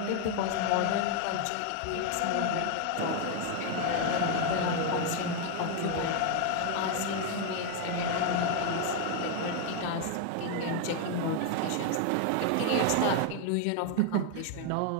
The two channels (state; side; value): different; both; correlation 0.01